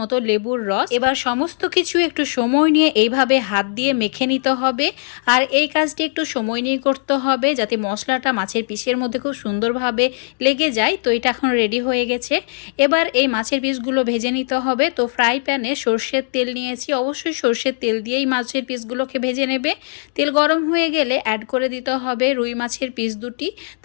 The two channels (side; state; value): right; silent; digital silence